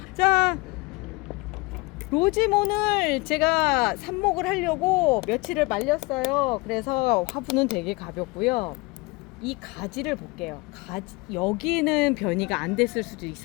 자, 로지몬을 제가 삽목을 하려고 며칠을 말렸어요. 그래서 화분은 되게 가볍고요. 이 가지를 볼게요. 여기는 변이가 안 됐을 수도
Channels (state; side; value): quieter; right; 24.9 dB